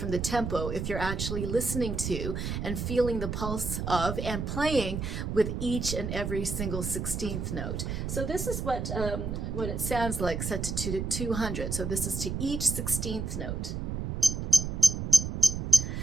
the tempo if you're actually listening to and feeling the pulse of and playing with each and every single 16th note. So this is what it sounds like set to 200. So this is to each 16th note.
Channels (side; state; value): right; noise; rumble, 3 dB below the sound